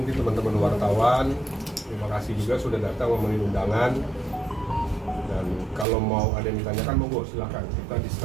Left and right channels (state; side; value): drops out; left; at 5.9 s